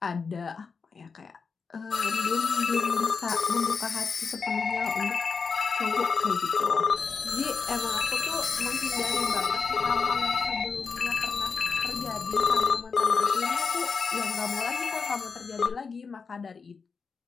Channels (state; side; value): quieter; right; 5.2 dB